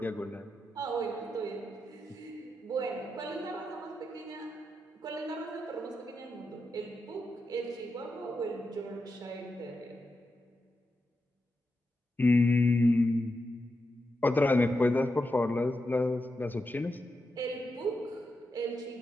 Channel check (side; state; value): both; normal; correlation 0.87